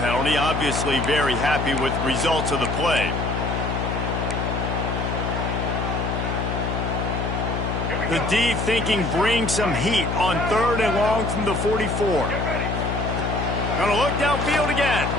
obviously very happy with the results of the play. The D thinking bring some heat on 3rd and long from the 44. Gonna look downfield again.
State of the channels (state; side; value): noise; left; hum, 2 dB below the sound